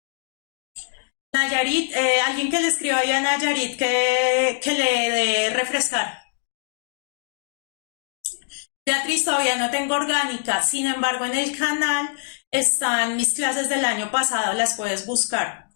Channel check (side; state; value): right; silent; digital silence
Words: Nayarit, alguien que le escriba ahí a Nayarit que le dé refrescar. Beatriz, todavía no tengo orgánica, sin embargo en el canal están mis clases del año pasado, las puedes buscar.